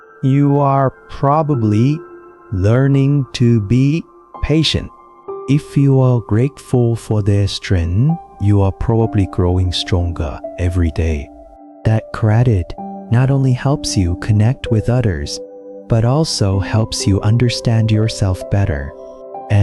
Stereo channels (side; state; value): both; identical; correlation 1.00